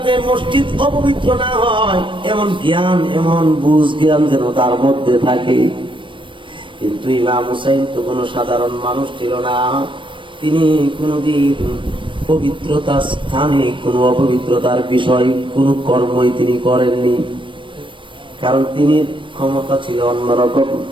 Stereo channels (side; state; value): left; late; 0.24 ms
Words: মসজিদ অপবিত্র না হয়, এমন জ্ঞান, এমন বুঝ জ্ঞান যেন তার মধ্যে থাকে। কিন্তু ইমাম হুসাইন তো কোনো সাধারণ মানুষ ছিল না। তিনি কোনদিন পবিত্রতার স্থানে কোনো অপবিত্রতার বিষয় কোনো কর্মই তিনি করেননি, কারণ তিনি ক্ষমতা ছিল অন্যরকম।